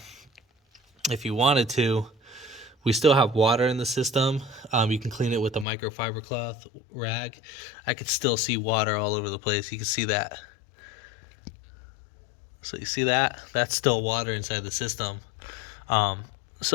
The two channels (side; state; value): right; drops out; at 5.7 s